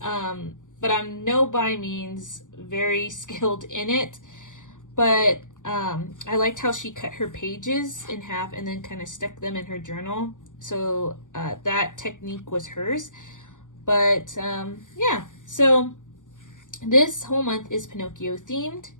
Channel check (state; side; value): late; right; 0.87 ms